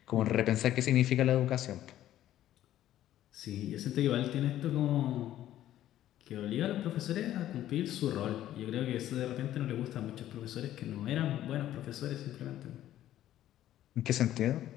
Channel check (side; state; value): right; quieter; 12.8 dB